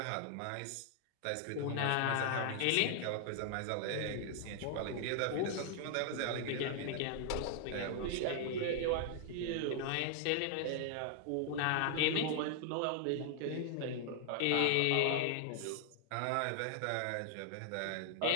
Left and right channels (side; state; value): both; different; correlation 0.00